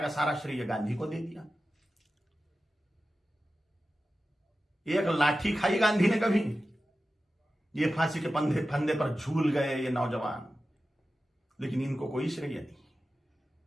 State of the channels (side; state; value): both; normal; correlation 0.94